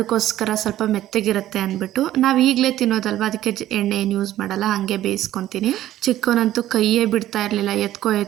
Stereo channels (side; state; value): left; quieter; 13.5 dB